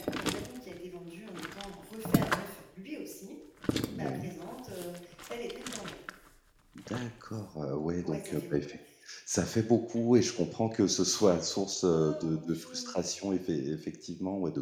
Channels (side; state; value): both; identical; correlation 1.00